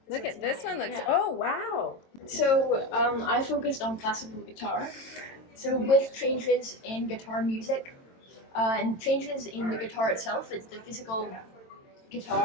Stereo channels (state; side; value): late; right; 22 ms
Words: Look at this one. Looks. Oh wow. So I focused on classical guitar. So with changes in guitar music and changes in the guitar itself, it's the physical